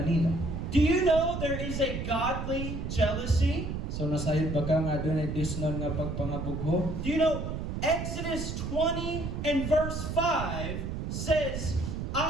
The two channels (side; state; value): right; noise; rumble, 4 dB below the sound